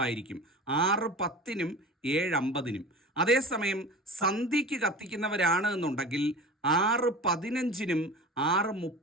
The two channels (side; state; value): both; normal; correlation 0.36